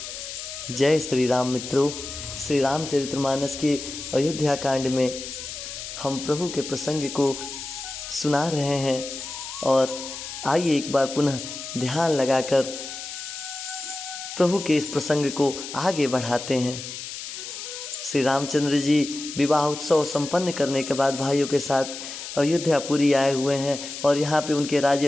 जय श्री राम मित्रों, श्री रामचरितमानस के अयोध्या कांड में हम प्रभु के प्रसंग को सुना रहे हैं और आइए एक बार पुनः ध्यान लगाकर प्रभु के इस प्रसंग को आगे बढ़ाते हैं। श्री रामचंद्र जी विवाह उत्सव संपन्न करने के बाद भाइयों के साथ अयोध्यापुरी आए हुए हैं और यहाँ पे उनके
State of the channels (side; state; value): left; noise; hiss, 9 dB below the sound